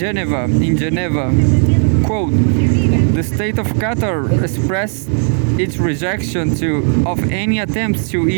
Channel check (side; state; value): left; silent; 56 dB below the other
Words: Geneva. Quote, the state of Qatar expressed its rejection of any attempts to